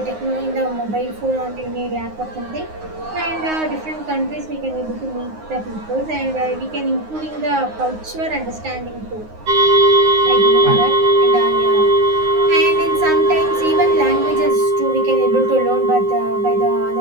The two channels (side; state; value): left; late; 9.6 ms